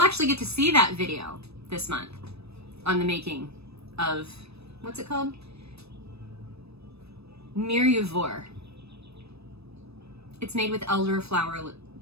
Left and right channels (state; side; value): late; left; 0.78 ms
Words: actually get to see that video this month on the making of, what's it called? Mirepoix. It's made with elderflower